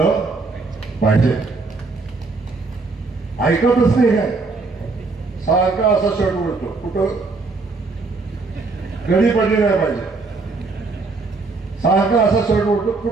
पाहिजे. ऐकतच नाही काय, सारखा असा शर्ट उडतो, कुठं घडी पडली नाही पाहिजे. सारखा असा शर्ट उडतो,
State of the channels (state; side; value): quieter; left; 3.9 dB